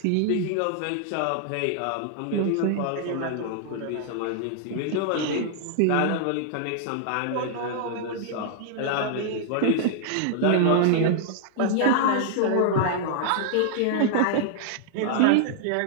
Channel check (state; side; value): different; both; correlation -0.01